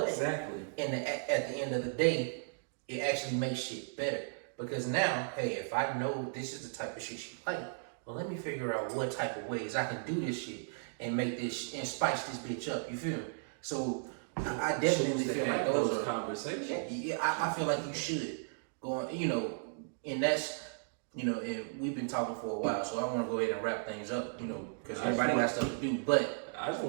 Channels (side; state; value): left; silent; digital silence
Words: exactly. At the end of the day, it actually makes shit better because now, hey, if I know this is the type of shit she like, well, let me figure out what type of ways I can do this shit and make this and spice this bitch up. You feel me? So. I definitely feel like those are conversations. Yeah, I feel like you should go on, you know, and that's, you know, and we've been talking for a while, so I want to go ahead and wrap things up, you know, because everybody got stuff to do. But I just